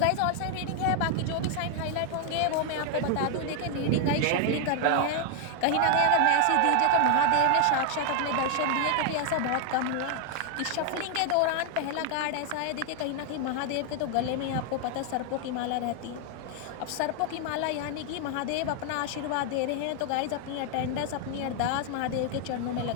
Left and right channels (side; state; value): both; different; correlation 0.00